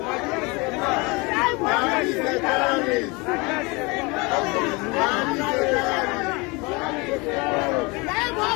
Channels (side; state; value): right; quieter; 26.9 dB